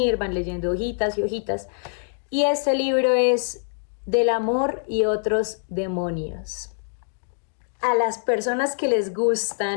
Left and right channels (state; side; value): silent; right; digital silence